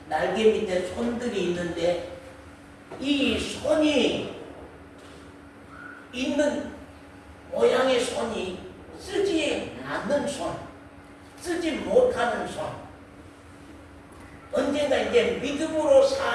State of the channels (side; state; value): both; identical; correlation 1.00